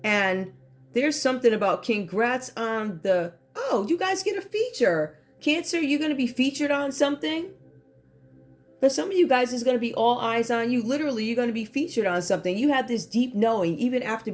And there's something about congrats on the, oh, you guys get a feature. Cancer, you're going to be featured on something. For some of you guys, it's going to be all eyes on you. Literally, you're going to be featured on something. You have this deep knowing, even after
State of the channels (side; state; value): both; identical; correlation 1.00